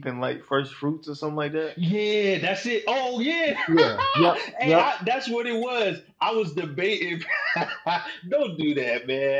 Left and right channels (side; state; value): both; identical; correlation 1.00